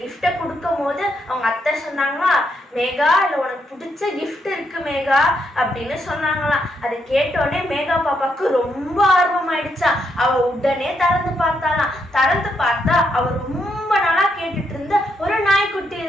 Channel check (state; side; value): normal; both; correlation 0.78